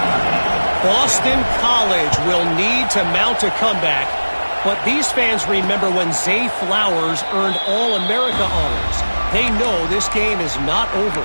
Boston College will need to mount a comeback, but these fans remember when Zay Flowers earned All-America honors. They know this game is not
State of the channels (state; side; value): inverted; both; correlation -1.00